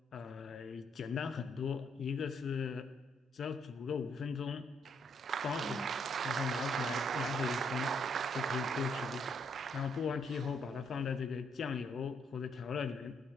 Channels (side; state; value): both; normal; correlation 0.72